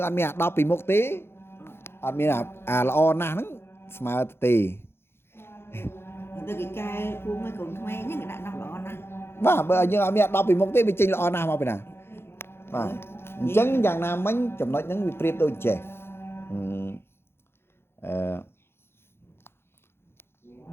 អត់មានអា10ពីមុខទេអត់មានអាល្អណាស់ហ្នឹងស្មើទៅទេទៅគេកែពូមួយកូនក្មេងហ្នឹងគេដាក់10ល្អណាស់បាទបើយើងអត់មានអា10ពីមុខទេវាចេញល្អណាស់មកពីណាបាទអញ្ចឹងយ៉ាងណាមិញចំណុចហ្នឹងវាប្រៀបដូចចេះ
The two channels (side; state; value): right; late; 0.12 ms